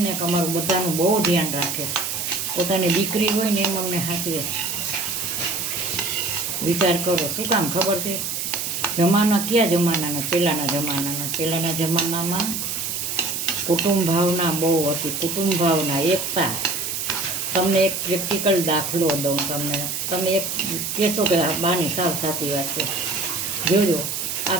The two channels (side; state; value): right; noise; hiss, 3 dB below the sound